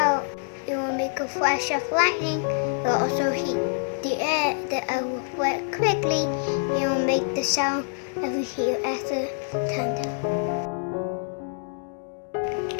It will make a flash of lightning. It will also heat the air. The air will reflect quickly. It will make the sound that we hear as a thunder.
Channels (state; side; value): silent; right; 61 dB below the other